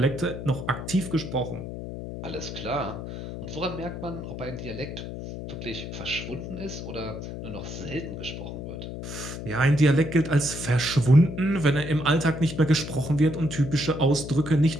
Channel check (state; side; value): noise; left; hum, 8 dB below the sound